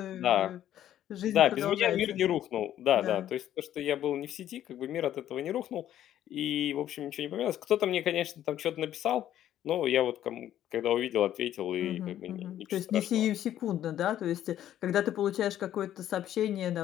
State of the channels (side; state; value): right; quieter; 11.7 dB